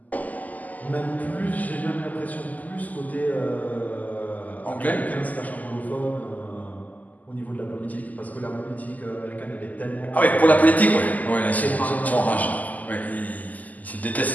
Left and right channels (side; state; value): right; late; 0.079 ms